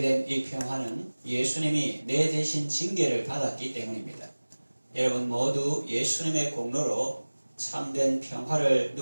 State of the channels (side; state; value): both; inverted; correlation -1.00